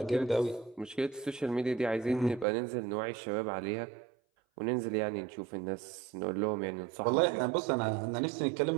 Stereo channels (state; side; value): drops out; left; at 2.5 s